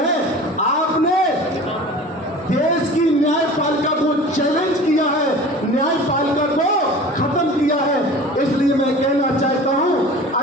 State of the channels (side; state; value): both; normal; correlation 0.40